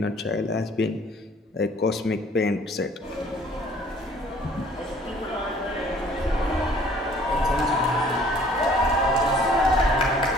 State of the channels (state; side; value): normal; both; correlation 0.55